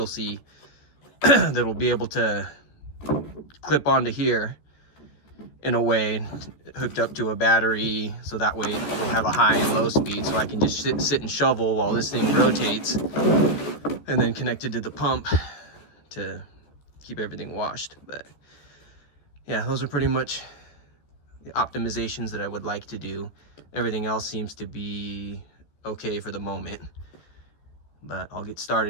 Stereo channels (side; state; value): right; late; 14 ms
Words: see that'll be able to clip onto here in a way hooked up to a battery, so that way we'll have a high and low speed, so I can just sit and shovel while this thing rotates, and then connected to the pump to keep everything washed. But yeah, those are pretty much the optimizations that I would like to do. Everything else seems to be okay for the moment, but I'll get